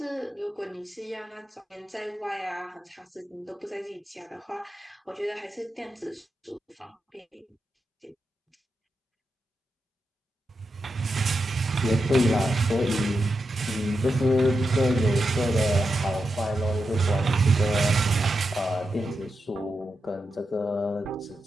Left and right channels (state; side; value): normal; both; correlation 0.88